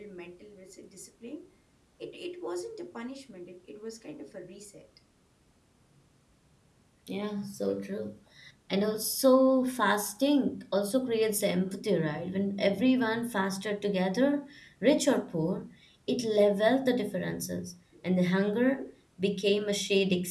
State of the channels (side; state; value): both; identical; correlation 1.00